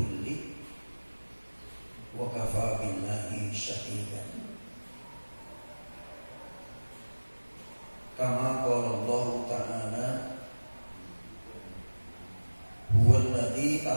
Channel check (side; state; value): both; inverted; correlation -1.00